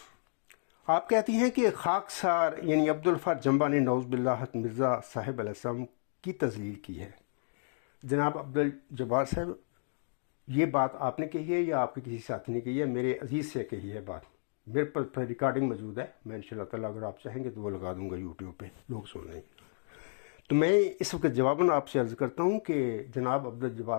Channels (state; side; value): silent; right; digital silence